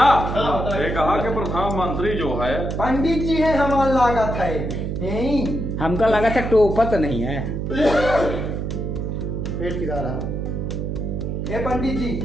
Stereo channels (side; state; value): right; noise; hum, 3 dB below the sound